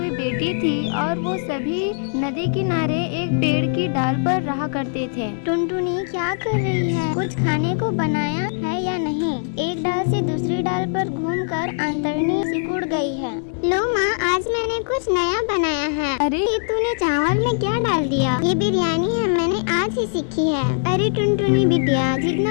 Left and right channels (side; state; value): right; silent; digital silence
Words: बेटी थी और वो सभी नदी किनारे एक पेड़ की डाल पर रहा करते थे। टुनटुनी क्या कर रही है? कुछ खाने को बनाया है या नहीं? एक डाल से दूसरी डाल पर घूमकर अंतड़नी सिकुड़ गई है। लो माँ, आज मैंने कुछ नया बनाया है। अरे ये तूने चावल में क्या डाल दिया? ये बिरयानी है, मैंने आज ही सीखी है। अरे टुनटुनी बिटिया,